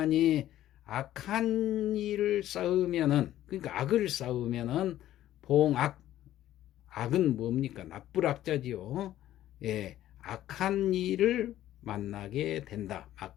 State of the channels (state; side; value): quieter; right; 13.2 dB